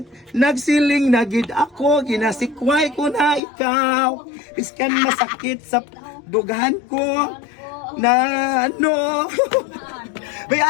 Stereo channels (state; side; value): drops out; right; at 3.4 s